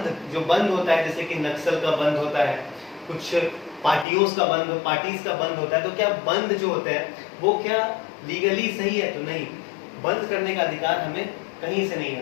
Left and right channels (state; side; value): drops out; right; at 4.0 s